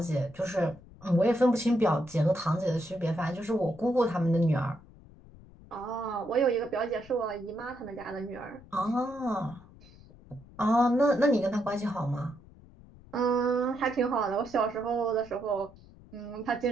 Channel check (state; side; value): noise; left; rumble, 22 dB below the sound